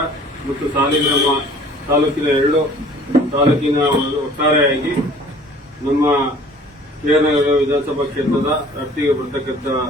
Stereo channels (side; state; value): both; normal; correlation 0.51